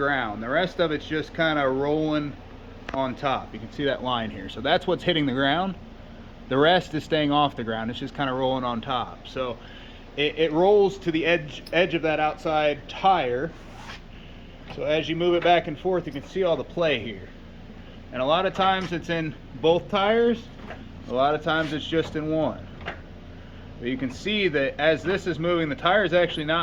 The rest of it's just kind of rolling on top. You can see that line here. So that's what's hitting the ground. The rest is staying off the ground. It's just kind of rolling on top. So it rolls to the edge of that outside tire. So as you move it back and forth, you can see all the play here. And a lot of times it's in both tires. A lot of times it's just in one. But you can see that as this is moving, the tire is actually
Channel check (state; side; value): identical; both; correlation 1.00